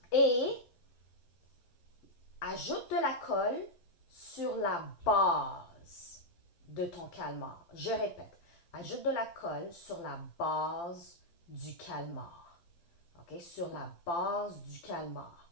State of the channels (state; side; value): late; right; 12 ms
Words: et ajoute de la colle sur la base de ton calmar. Je répète, ajoute de la colle sur la base du calmar. OK? Sur la base du calmar.